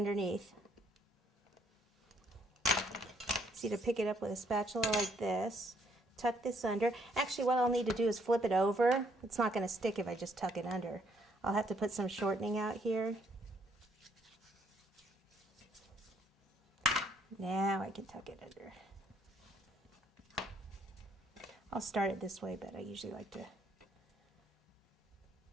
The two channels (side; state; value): both; normal; correlation 0.68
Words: See, to pick it up with a spatula like this. Tuck this under. Actually, what I'll need to do is flip it over. It's not going to stick if I just tuck it under. I'll have to put some shortening out here. Now I can tuck it under. I'll start it this way, but I usually like to